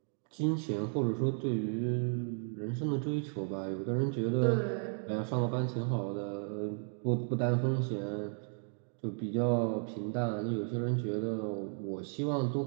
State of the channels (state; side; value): silent; left; 55 dB below the other